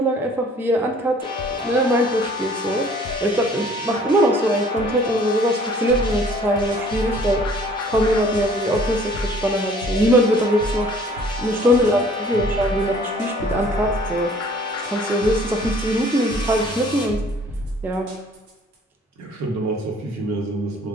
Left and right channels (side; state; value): both; normal; correlation 0.55